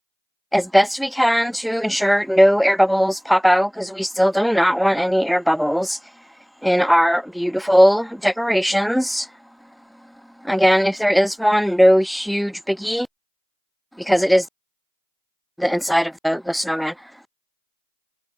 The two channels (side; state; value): both; identical; correlation 1.00